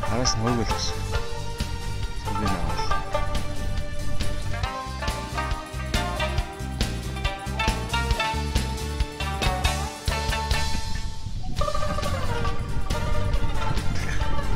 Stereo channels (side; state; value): both; identical; correlation 1.00